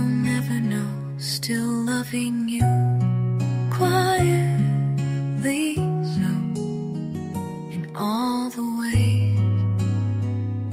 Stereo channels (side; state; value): both; identical; correlation 1.00